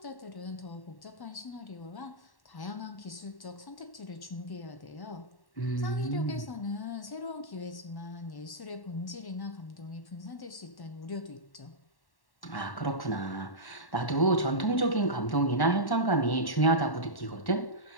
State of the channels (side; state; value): right; late; 1.1 ms